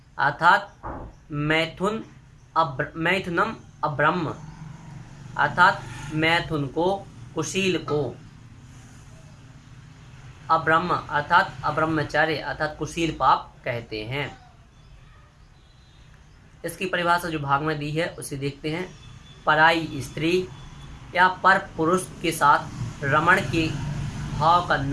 अर्थात मैथुनम अब्रह्म अर्थात मैथुन को, कुशील को, अब्रह्म अर्थात अब्रह्मचर्य अर्थात कुशील पाप कहते हैं। इसकी परिभाषा जो भाग में दी है उसे देखते हैं। पराई स्त्री या पर पुरुष के साथ रमण के भाव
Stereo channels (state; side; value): identical; both; correlation 1.00